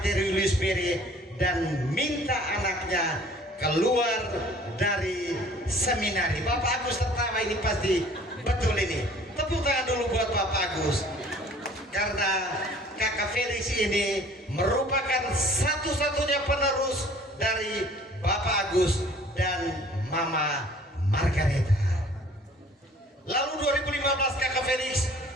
Julius Beri dan minta anaknya keluar dari seminari. Bapak Agus tertawa, ini pasti betul ini. Tepuk tangan dulu buat Bapak Agus, karena kakak Felix ini merupakan satu-satunya penerus dari Bapak Agus dan Mama Margareta. Lalu 2015 kakak Felix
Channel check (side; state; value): both; normal; correlation 0.52